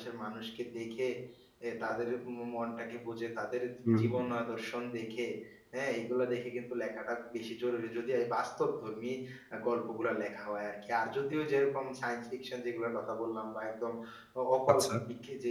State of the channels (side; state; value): both; identical; correlation 1.00